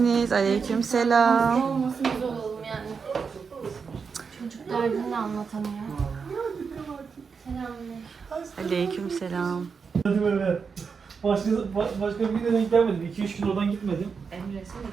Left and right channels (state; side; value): quieter; left; 5.6 dB